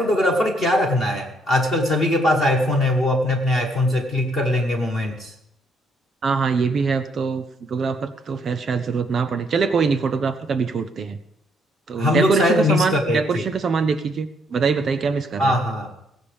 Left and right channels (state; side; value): normal; both; correlation 0.70